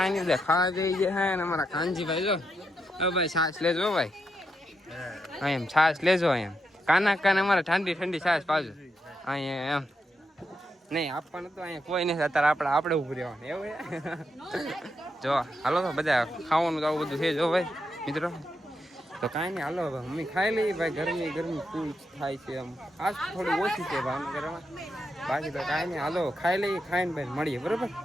નહીં ખાવા જઈ ગયા હે ને અમારા કાનજીભાઈ જો ભાઈ છાશ લેજો ભાઈ હા એમ છાશ લેજો એમ કાના અમારે ઠંડી છાશ પાજો અહીંયા એમ નહીં આપવાનું તો અહીંયા કોઈ નહીં અત્યારે આપણે ઉભું રહેવાનું એવું જો હાલો તો બધા ખાવાનું તો આવું બધું છે જો ભાઈ મિત્રો તો કાંઈ નહીં હાલો મમ્મી ખાઈ લઈએ ભાઈ ગરમી ફૂલ થાય છે આમ આજ થોડી ઓછી છે ભાવનગરમાં બાકી તો કાંઈ નહીં હાલો ખાઈ લઈએ ખાઈને ભાઈ મળીએ બરોબર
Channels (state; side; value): normal; both; correlation 0.83